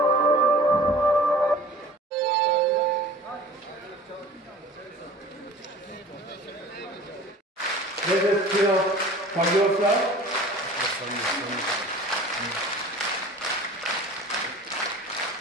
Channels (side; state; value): both; normal; correlation 0.44